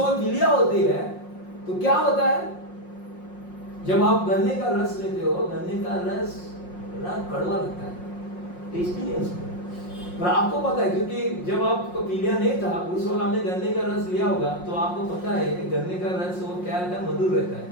पीलिया होती है, तो क्या होता है, जब आप गन्ने का रस लेते हो, गन्ने का रस बड़ा कड़वा लगता है, टेस्टी नहीं उसमें, पर आपको पता है, क्योंकि जब आपको पीलिया नहीं था, उस वक्त आपने गन्ने का रस लिया होगा, तो आपको पता है कि गन्ने का रस वो क्या रहता है, मधुर रहता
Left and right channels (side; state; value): right; late; 5.6 ms